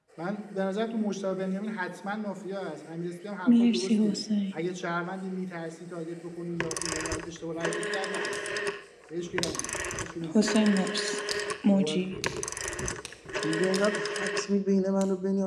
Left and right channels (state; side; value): identical; both; correlation 1.00